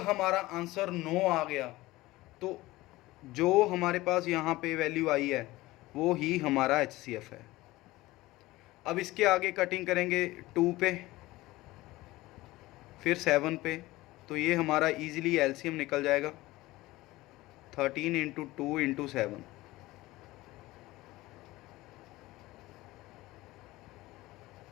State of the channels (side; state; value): right; quieter; 18.7 dB